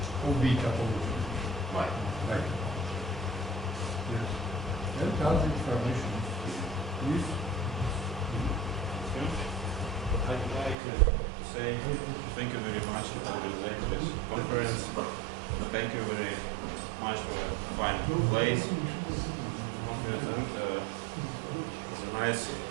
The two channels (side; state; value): left; drops out; at 10.8 s